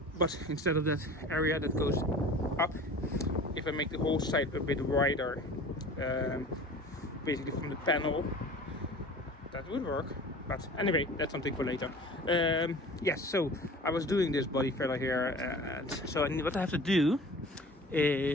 But instead of that area that goes up, if I make the whole side a bit wider, basically from the panel, that would work. But anyway, that's something for later. Yes, so I was doing this body filler here, and so what I have to do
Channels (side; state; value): both; normal; correlation 0.42